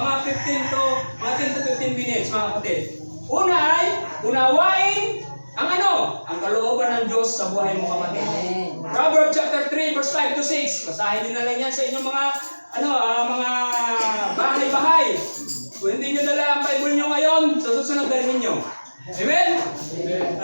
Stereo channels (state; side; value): inverted; both; correlation -1.00